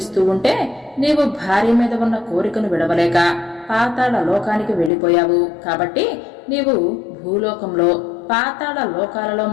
ఉంటే నీవు భార్య మీద ఉన్న కోరికను విడవలేక పాతాళ లోకానికి వెళ్లిపోయావు. కాబట్టి నీవు భూలోకంలో పాతాళ లోకాలలో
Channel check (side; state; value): right; drops out; at 4.9 s